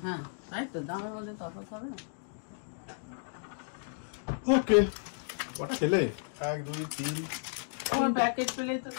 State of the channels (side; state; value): right; silent; digital silence